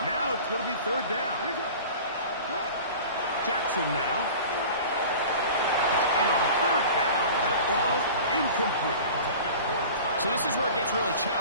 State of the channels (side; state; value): both; inverted; correlation -0.39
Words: Now it's going to be 3rd down. Jackson now. And on 3rd down, that ball incomplete. So this is where it gets really